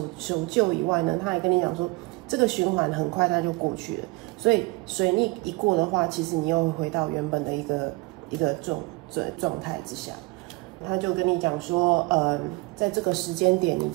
旧以外呢，他还跟你讲说，这个循环很快它就过去了。所以水逆一过的话，其实你又回到原本的一个状态之下。他就跟你讲说，在这个时间点，你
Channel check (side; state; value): left; quieter; 24.3 dB